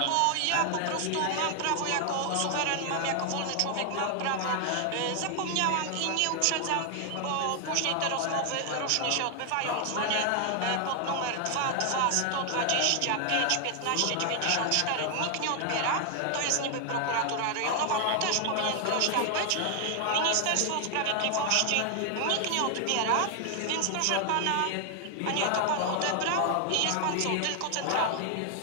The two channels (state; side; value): different; both; correlation 0.00